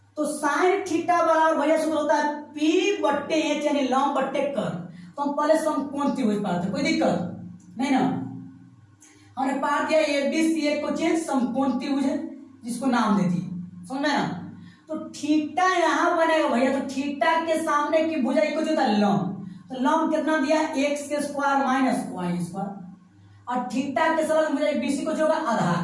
तो साइन थीटा बराबर भैया सूत्र होता है P बट्टे एच, यानी लंब बट्टे कर्ण। तो हम पहले समकोण त्रिभुज पाते, कोई दिक्कत नहीं ना। हमने पाठ दिया ABC एक क्वेश्चन समकोण त्रिभुज है, जिसको नाम दे दिए, समझ में ना। तो थीटा यहाँ बनेगा भैया, तो थीटा के सामने की भुजा इक्वल होता है लंब। तो लंब कितना दिया एक्स के स्क्वायर माइनस वाई स्क्वायर, और थीटा के साथ भुजा BC को होगा आधार।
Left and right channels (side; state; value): both; identical; correlation 1.00